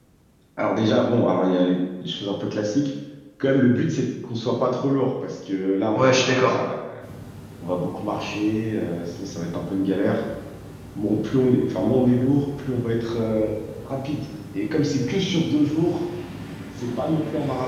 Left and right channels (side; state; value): both; identical; correlation 1.00